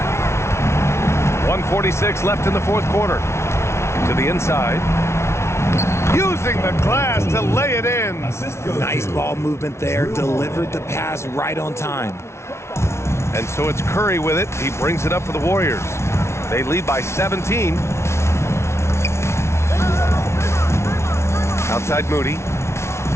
.146 left in the fourth quarter. To the inside. Using the glass to lay it in. Nice ball movement there. Delivered the pass right on time. And so it's Curry with it. He brings it up for the Warriors. They lead by 17. Outside Moody.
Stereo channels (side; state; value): right; late; 0.13 ms